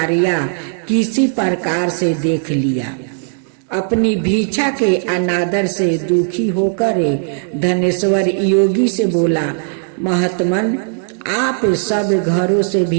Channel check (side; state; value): left; silent; 68 dB below the other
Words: किसी प्रकार से देख लिया। अपनी भिक्षा के अनादर से दुखी होकर धनेश्वर योगी से बोला, महात्मन, आप सब घरों से